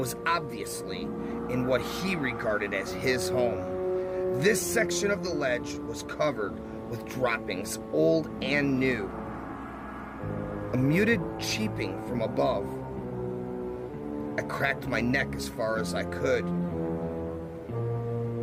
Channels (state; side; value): identical; both; correlation 1.00